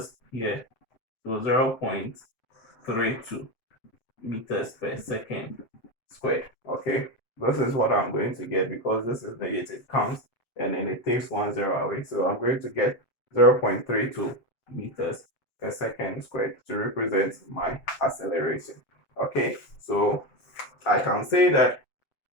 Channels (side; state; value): right; late; 7.7 ms